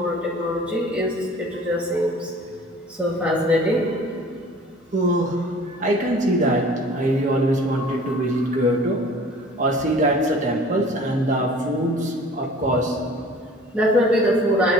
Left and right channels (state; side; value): normal; both; correlation 0.47